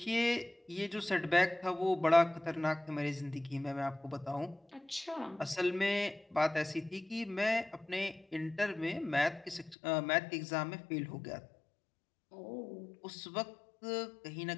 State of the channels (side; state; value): right; drops out; at 9.8 s